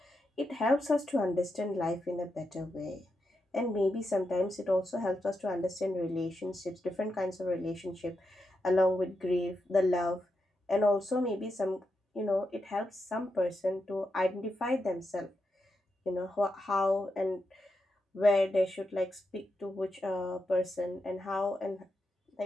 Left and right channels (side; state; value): both; normal; correlation 0.85